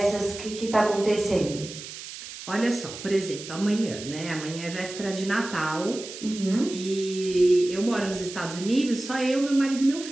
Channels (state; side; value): noise; right; hiss, 12 dB below the sound